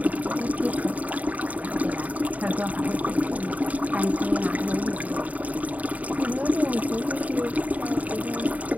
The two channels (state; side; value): late; left; 0.072 ms